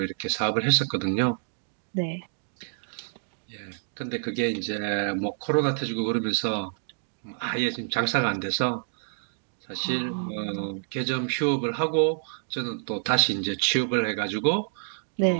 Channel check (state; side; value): silent; left; digital silence